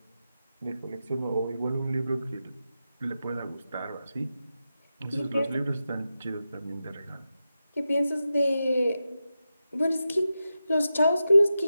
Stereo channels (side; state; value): both; inverted; correlation -0.90